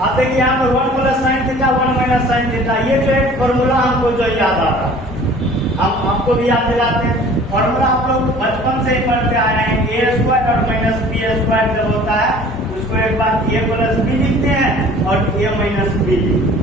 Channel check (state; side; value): normal; both; correlation 0.48